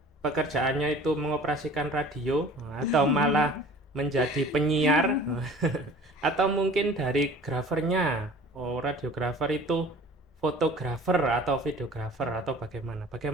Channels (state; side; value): normal; both; correlation 0.46